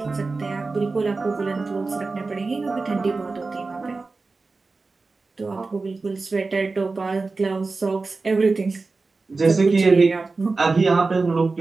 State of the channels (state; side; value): quieter; left; 3.9 dB